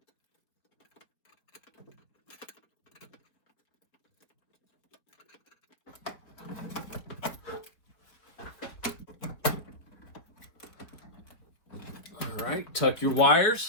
All right, tuck your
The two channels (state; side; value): late; right; 4.0 ms